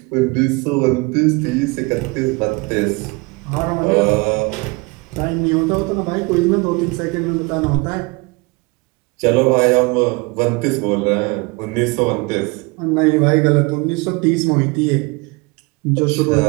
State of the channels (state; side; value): quieter; left; 27.1 dB